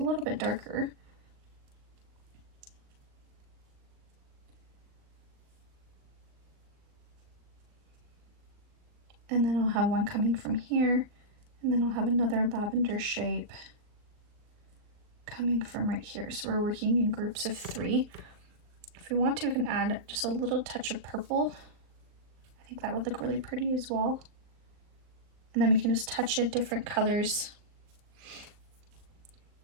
bit darker. And then I'll have one coming from here, and then I'll have another lavender shape coming from right here. So we're working in groups of 3. If we want to, we can add just a little touch of purple. I think that would look really pretty as well. And then we can just touch it different colors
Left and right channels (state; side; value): late; left; 38 ms